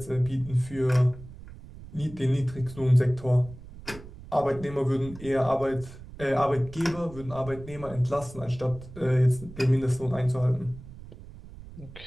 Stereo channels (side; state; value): right; noise; rumble, 16 dB below the sound